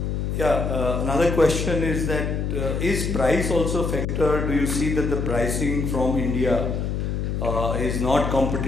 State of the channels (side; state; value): left; noise; hum, 1 dB below the sound